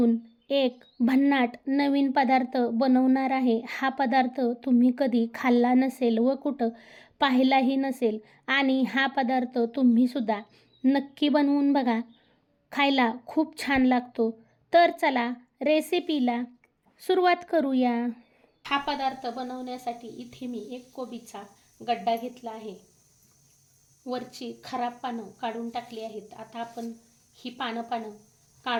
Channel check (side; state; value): both; identical; correlation 1.00